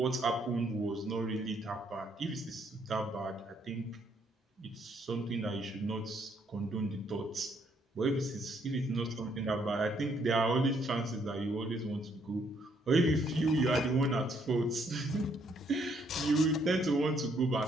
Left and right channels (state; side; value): normal; both; correlation 0.70